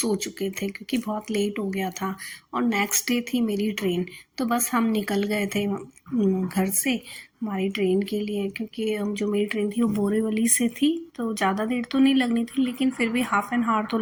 चुके थे क्योंकि बहुत लेट हो गया था और नेक्स्ट डे थी मेरी ट्रेन। तो बस हम निकल गए थे घर से हमारी ट्रेन के लिए, क्योंकि जो मेरी ट्रेन थी वो बोरीवली से थी, तो ज़्यादा देर तो नहीं लगनी थी लेकिन फिर भी हाफ़ एन आवर तो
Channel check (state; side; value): identical; both; correlation 1.00